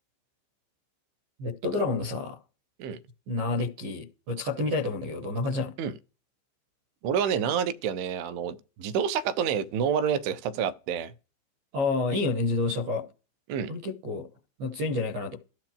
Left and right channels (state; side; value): late; left; 15 ms